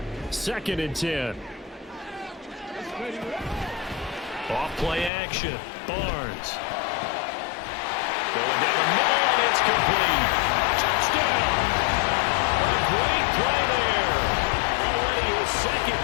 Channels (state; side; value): drops out; right; at 5.1 s